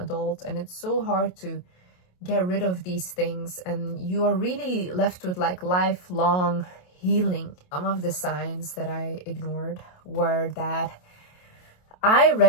And it's so hard to get rid of these things. And you are really left with like lifelong healing. Some of the signs that I ignored were that I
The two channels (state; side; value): late; right; 28 ms